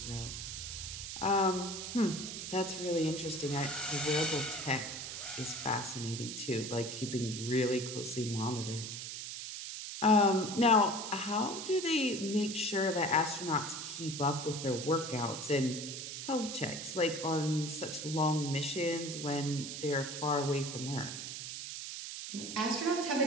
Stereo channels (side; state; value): right; noise; hiss, 7 dB below the sound